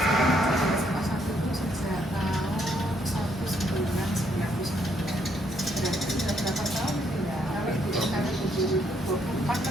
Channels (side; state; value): both; normal; correlation 0.72